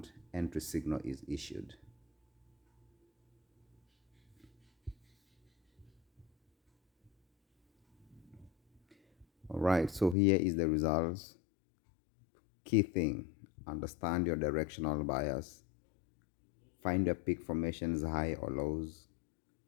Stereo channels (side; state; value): right; drops out; at 10.2 s